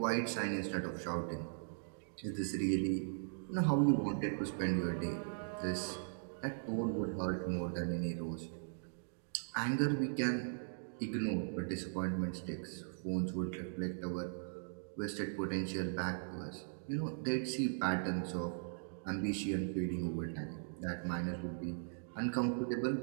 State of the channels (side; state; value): left; silent; digital silence